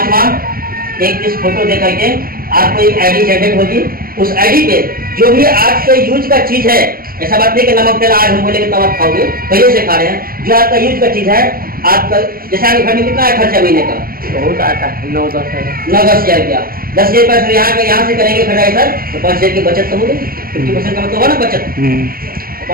एक पीस फोटो दे करके आपको एक ID जनरेट होगी। उस ID पे जो भी आपके यूज का चीज है, ऐसा बात नहीं कि नमक तेल आज हम बोलेंगे तब आप खाओगे, पहले से खा रहे हैं, जो आपका यूज का चीज है आपका, जैसे आपके घर में कितना है खर्चा महीने का? बहुत आता है, 9-10 हज़ार रुपया। 10 हज़ार रुपया यहाँ से करेंगे खटाई सर, तो 5 हज़ार की बचत तो हो गई। 50% का मतलब हुआ ना बचत,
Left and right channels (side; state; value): left; late; 0.42 ms